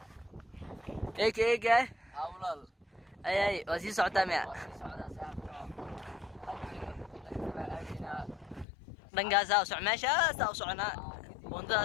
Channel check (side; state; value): right; drops out; at 8.7 s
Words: eega hawlal ay waa sii socotaa miya dhankaasa u soc meeshaasa u soconaa